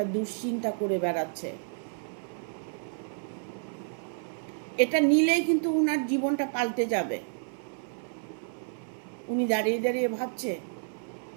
দুশ্চিন্তা করে বেড়াচ্ছে। এটা নিলেই কিন্তু উনার জীবনটা পাল্টে যাবে। উনি দাঁড়িয়ে দাঁড়িয়ে ভাবছে,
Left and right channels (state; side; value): silent; left; 58 dB below the other